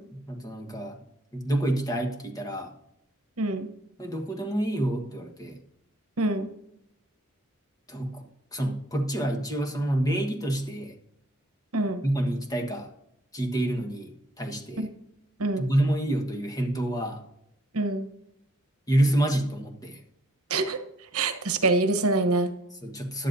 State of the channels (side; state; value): both; normal; correlation 0.64